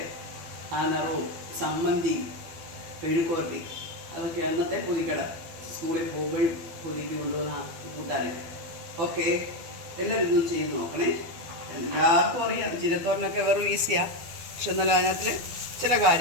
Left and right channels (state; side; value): late; left; 12 ms